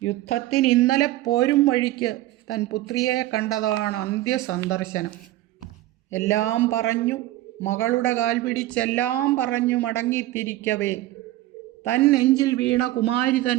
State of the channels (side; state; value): left; quieter; 15.9 dB